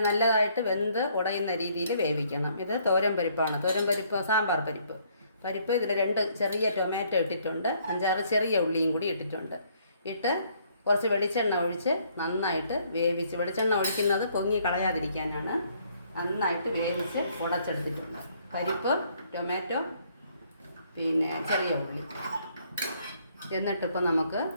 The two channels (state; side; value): inverted; both; correlation -0.66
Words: നല്ലതായിട്ട് വെന്ത് ഉടയുന്ന രീതിയിൽ വേവിക്കണം. ഇത് തോരൻ പരിപ്പാണ്. തോരൻ പരിപ്പ്, സാമ്പാർ പരിപ്പ്. ഇതിൽ 2 ചെറിയ ടൊമാറ്റോ ഇട്ടിട്ടുണ്ട്, 5-6 ചെറിയ ഉള്ളിയും കൂടി ഇട്ടിട്ടുണ്ട്. കുറച്ച് വെളിച്ചെണ്ണ ഒഴിച്ച് നന്നായിട്ട് വേവിച്ച്, വെളിച്ചെണ്ണ ഒഴിക്കുന്നത് പൊങ്ങി കളയാതിരിക്കാനാണ്. നന്നായിട്ട് വേവിച്ച് ഉടച്ചെടുത്തിട്ടുണ്ട്. പരിപ്പ്, ടൊമാറ്റോ, ചെറിയ ഉള്ളി. എന്നിട്ടിപ്പോൾ നമുക്ക്